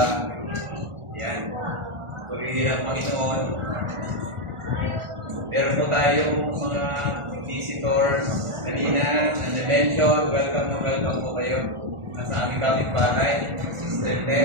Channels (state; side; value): late; left; 1.4 ms